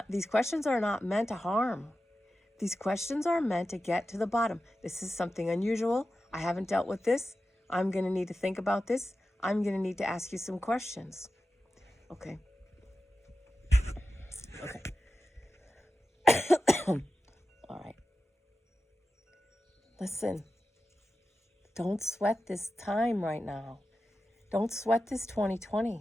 these questions are not meant to harm. These questions are meant to get to the bottom. This is something unusual. I haven't dealt with this. I'm going to need to think about this. I'm going to need to ask you some questions. Okay. Okay. All right. Listen, don't sweat this time right now. Don't sweat this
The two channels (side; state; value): both; normal; correlation 0.93